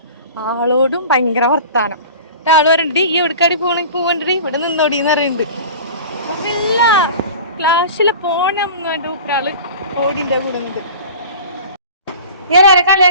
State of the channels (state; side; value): inverted; both; correlation -0.38